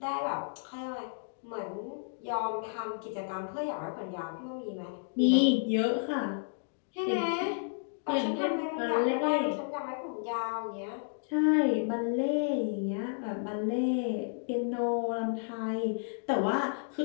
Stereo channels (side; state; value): right; silent; digital silence